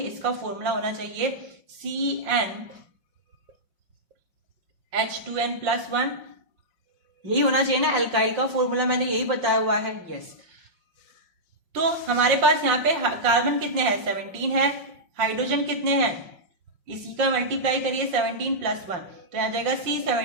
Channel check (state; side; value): late; left; 5.5 ms